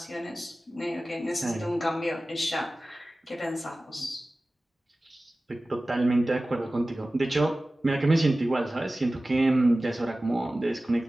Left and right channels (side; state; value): both; normal; correlation 0.97